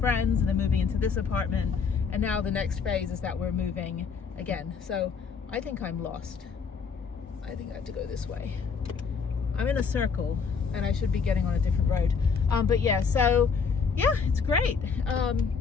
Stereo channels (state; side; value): quieter; right; 5.6 dB